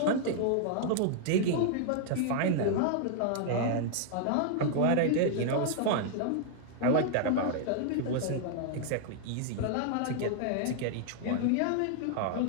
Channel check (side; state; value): both; different; correlation -0.01